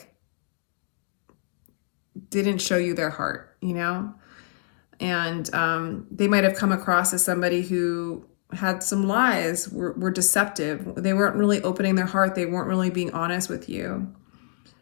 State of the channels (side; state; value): right; silent; 61 dB below the other